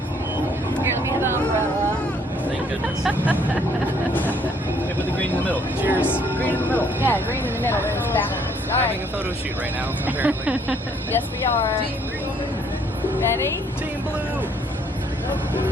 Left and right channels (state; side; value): normal; both; correlation 0.65